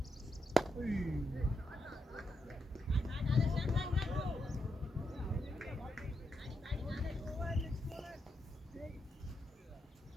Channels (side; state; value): both; normal; correlation 0.83